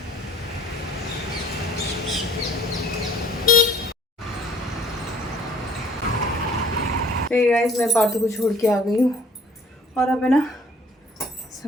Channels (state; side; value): normal; both; correlation 0.55